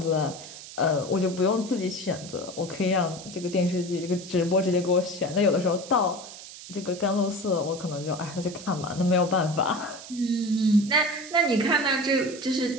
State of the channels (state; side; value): noise; right; hiss, 14 dB below the sound